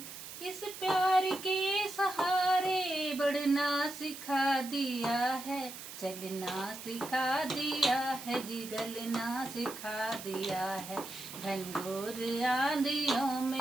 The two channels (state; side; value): noise; right; hiss, 12 dB below the sound